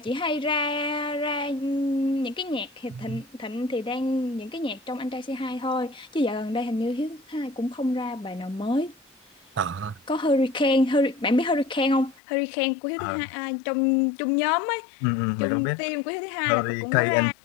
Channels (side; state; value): right; drops out; at 12.2 s